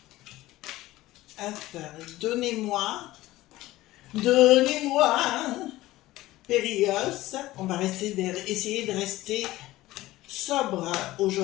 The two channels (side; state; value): right; quieter; 17.0 dB